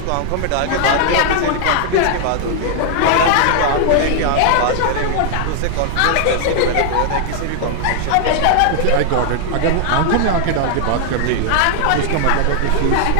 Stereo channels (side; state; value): both; different; correlation 0.00